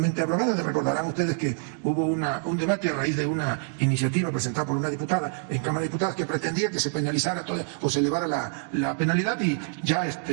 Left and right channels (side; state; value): left; silent; 61 dB below the other